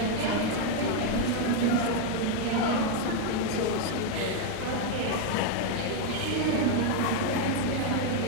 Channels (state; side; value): different; both; correlation 0.00